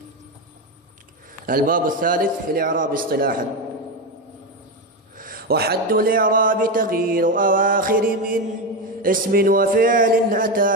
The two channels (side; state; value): both; normal; correlation 0.13